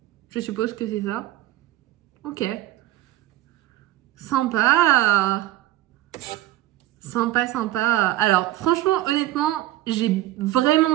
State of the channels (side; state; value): left; quieter; 15.2 dB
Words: Je suppose que c'est ça. Ok. Sympa. Sympa, sympa. Alors, franchement, honnêtement, j'ai